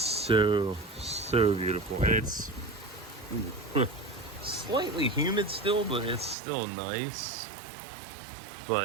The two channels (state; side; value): drops out; left; at 6.4 s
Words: beautiful. It's slightly humid still, but it's still nice.